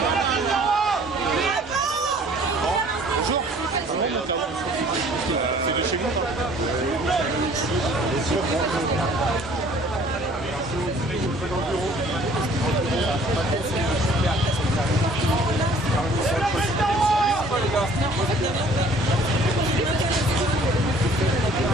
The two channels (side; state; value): both; normal; correlation 0.54